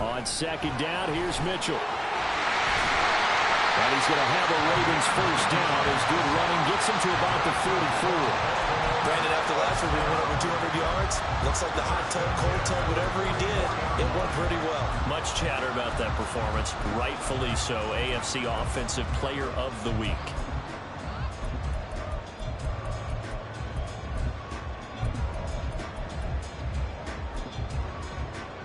2nd down, here's Mitchell. And he's going to have a Ravens first down. His good running gets him to about the 44. Brandon, after last week, we went over 200 yards. Looks like the hot tub, cold tub, whatever he did, it went pretty well. Much chatter about that performance. Rightfully so. AFC Offensive Player of the Week.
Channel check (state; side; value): identical; both; correlation 1.00